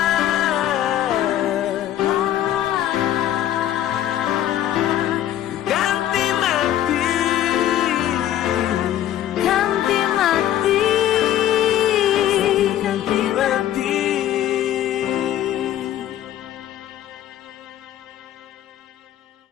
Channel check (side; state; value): right; quieter; 12.0 dB